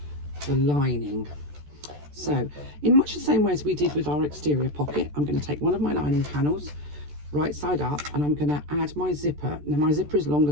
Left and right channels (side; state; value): left; late; 14 ms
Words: the lining. So in much the same way as we did with our exterior pocket, I'm going to take one of my lining panels, right side up, and I'm going to add my zipper. Now my zipper is longer